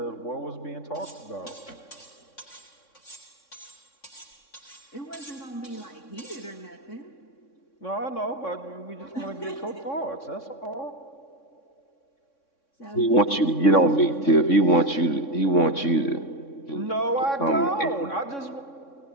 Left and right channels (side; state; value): right; late; 3.6 ms